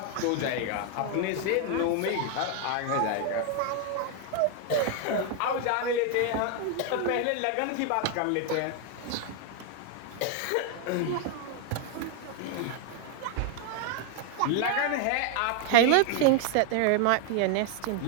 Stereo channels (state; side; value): different; both; correlation 0.00